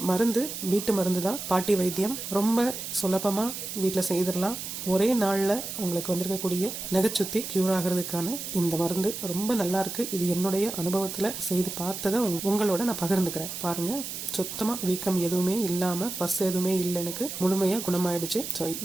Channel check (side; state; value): right; noise; hiss, 7 dB below the sound